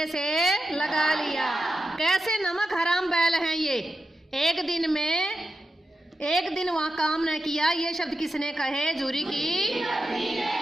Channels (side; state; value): both; normal; correlation 0.90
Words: से लगा लिया। कैसे नमक हराम बैल हैं ये? एक दिन वहाँ काम न किया। ये शब्द किसने कहे? जूरी की।